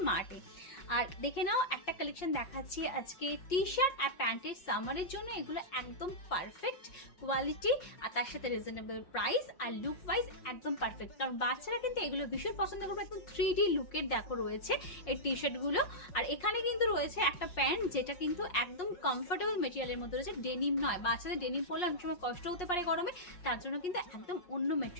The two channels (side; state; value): right; late; 5.6 ms